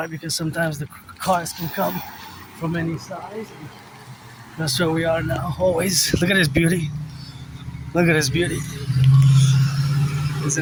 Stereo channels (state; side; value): identical; both; correlation 1.00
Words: because sometimes the cars can come from any size. That's where we are now, always. Look at this beauty. Look at this beauty.